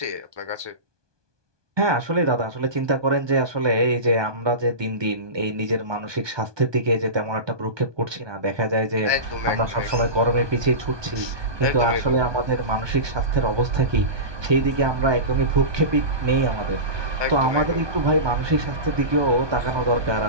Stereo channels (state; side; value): late; left; 1.2 ms